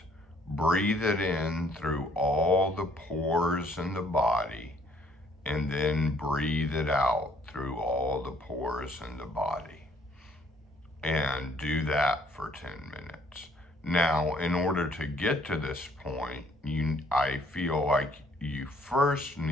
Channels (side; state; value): both; normal; correlation 0.63